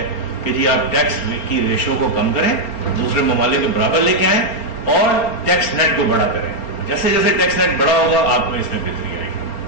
کہ جی آپ ٹیکس کی ریشو کو کم کریں، دوسرے ممالک کے برابر لے کے آئیں، اور ٹیکس نیٹ کو بڑا کریں. جیسے جیسے ٹیکس نیٹ بڑا ہوگا آپ میں اس میں بہتری آئے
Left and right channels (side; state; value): right; late; 4.3 ms